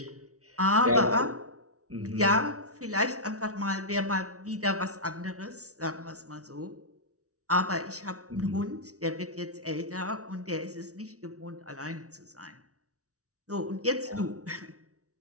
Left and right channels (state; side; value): late; left; 0.66 ms